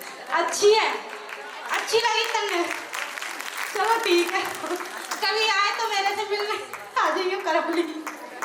अच्छी है, अच्छी लगी तन्ने, चलो ठीक है कभी आए तो मेरे से मिलने आ जाइए करौली।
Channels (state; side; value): identical; both; correlation 1.00